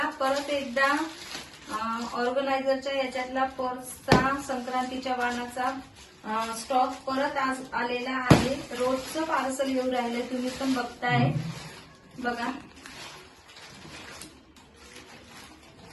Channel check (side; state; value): both; identical; correlation 1.00